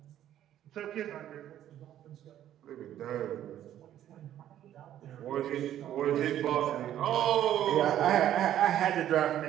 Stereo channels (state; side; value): quieter; left; 11.6 dB